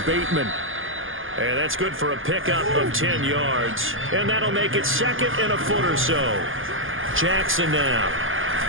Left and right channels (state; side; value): late; left; 0.58 ms